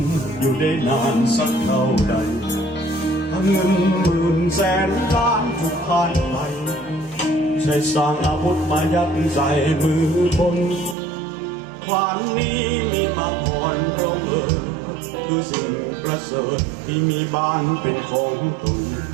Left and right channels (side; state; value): left; drops out; at 11.0 s